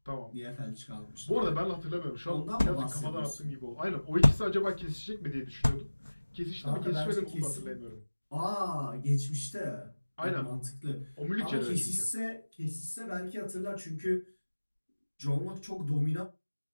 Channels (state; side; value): inverted; both; correlation -1.00